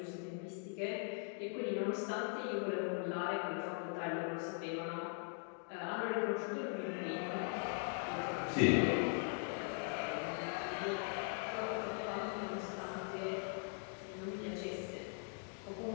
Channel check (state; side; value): silent; right; 51 dB below the other